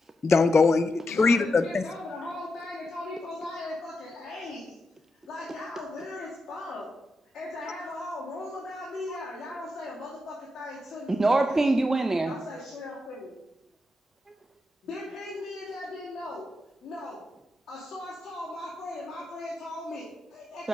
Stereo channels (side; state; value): both; normal; correlation 0.86